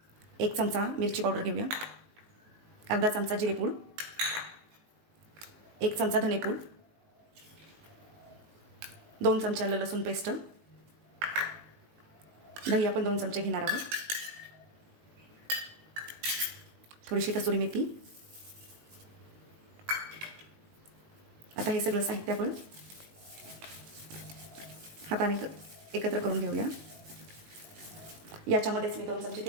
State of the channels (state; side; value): late; left; 19 ms